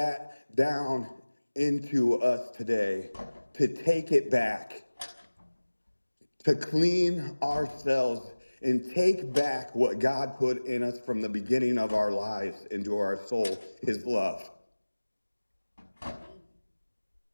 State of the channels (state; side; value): inverted; both; correlation -1.00